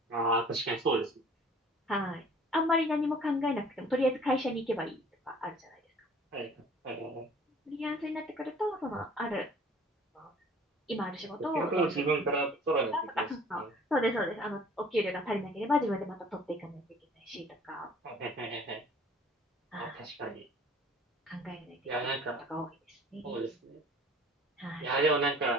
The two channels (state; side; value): normal; both; correlation 0.51